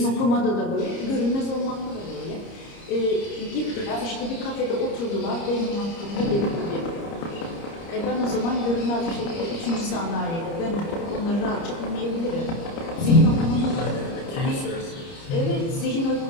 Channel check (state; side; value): late; right; 30 ms